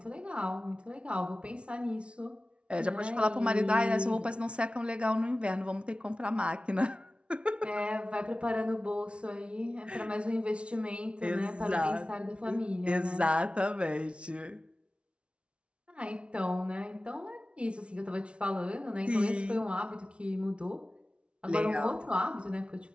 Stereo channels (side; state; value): left; late; 0.059 ms